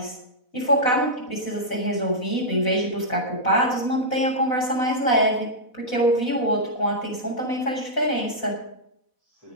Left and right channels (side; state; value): right; late; 4.1 ms